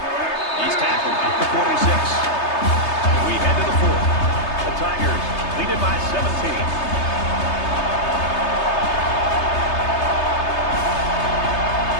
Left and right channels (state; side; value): late; right; 3.3 ms